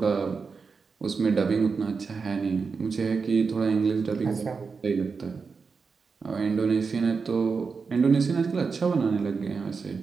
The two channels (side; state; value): left; quieter; 5.0 dB